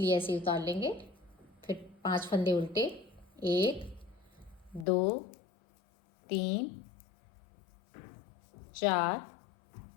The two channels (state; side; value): drops out; right; at 4.9 s